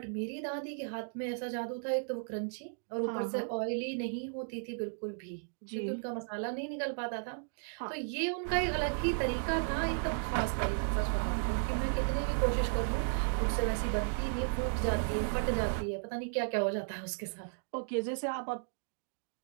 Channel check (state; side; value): silent; left; digital silence